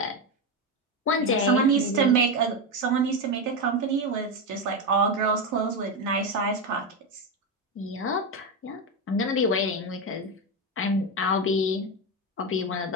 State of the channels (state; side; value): normal; both; correlation 0.12